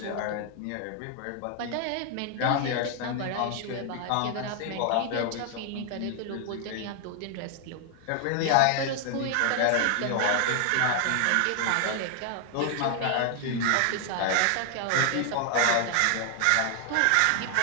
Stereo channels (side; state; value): both; different; correlation 0.00